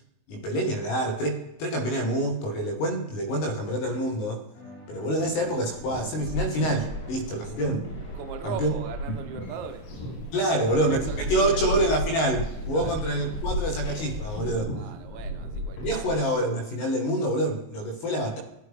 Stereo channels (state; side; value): late; right; 19 ms